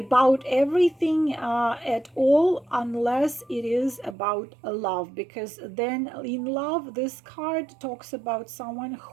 everything at all, unless it is about love, because then in love this card talks about someone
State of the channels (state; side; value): drops out; left; at 4.2 s